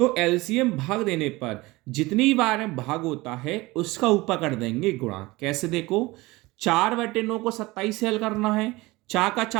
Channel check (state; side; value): quieter; left; 21.2 dB